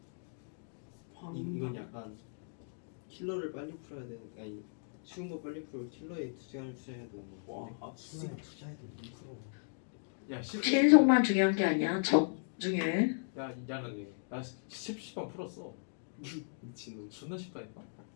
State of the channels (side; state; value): right; silent; digital silence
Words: 황. 이건 약간 킬러를 빨리 풀어야 되는 아니 쉬운 거 빨리 풀고 킬러에 시간을 투자해야 되는 거 같은데. 와 수나에 투자해도 2%. 야 신속만 중요한 게 아니야. 적 중요해. 야는 나 10번 풀었어. 미친놈. 존나 쉽다니까.